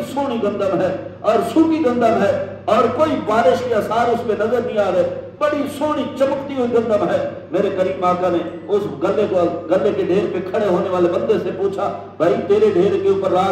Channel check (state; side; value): identical; both; correlation 1.00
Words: سونی گندم ہے اور سوکھی گندم ہے اور کوئی بارش کے آثار اس پہ نظر نہیں آ رہے، بڑی سونی چمکتی ہوئی گندم ہے۔ میرے کریم آقا نے اس گلے کے ڈھیر پہ کھڑے ہونے والے بندے سے پوچھا، بھائی تیرے ڈھیر کے اوپر